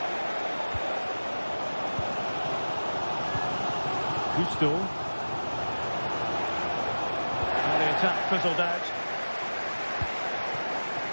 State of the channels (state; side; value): inverted; both; correlation -1.00